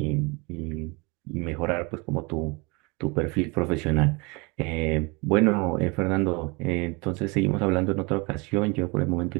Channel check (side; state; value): left; quieter; 28.0 dB